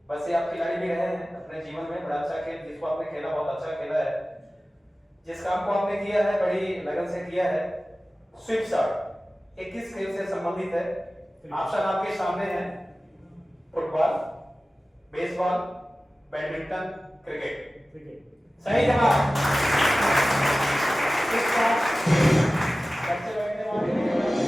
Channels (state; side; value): normal; both; correlation 0.96